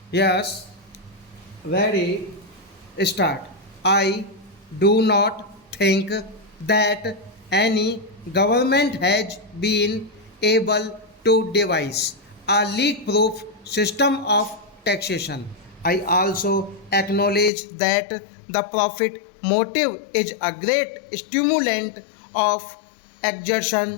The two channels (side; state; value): right; drops out; at 17.5 s